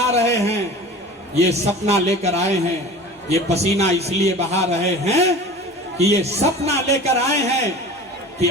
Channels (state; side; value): normal; both; correlation 0.38